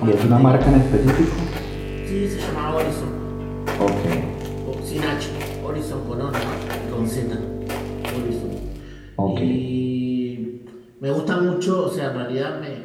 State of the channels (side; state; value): both; identical; correlation 1.00